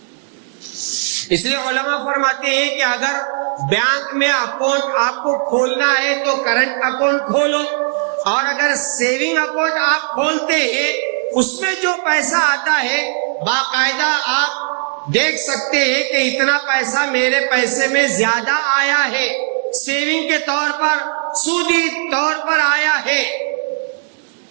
اس لیے علماء فرماتے ہیں کہ اگر بینک میں اکاؤنٹ آپ کو کھولنا ہے تو کرنٹ اکاؤنٹ کھولو، اور اگر سیونگ اکاؤنٹ آپ کھولتے ہیں اس میں جو پیسہ آتا ہے باقاعدہ آپ دیکھ سکتے ہیں کہ اتنا پیسہ میرے پیسے میں زیادہ آیا ہے، سیونگ کے طور پر، سودی طور پر آیا ہے،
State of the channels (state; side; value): silent; left; 68 dB below the other